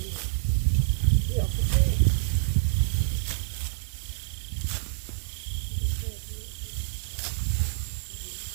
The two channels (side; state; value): left; silent; digital silence